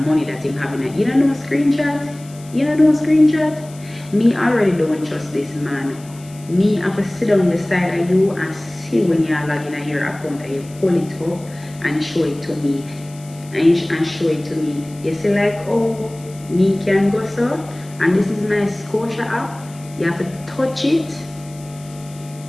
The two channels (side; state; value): left; noise; hiss, 22 dB below the sound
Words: that him having. You don't know screenshot? You don't know screenshot? Me already don't trust this man. Me have to sit down beside of you and see when you are logging at your account and you pull it up and show it to me. And show it to me. You see like, oh, me can go so, and this is my Scotia app. You have to touch it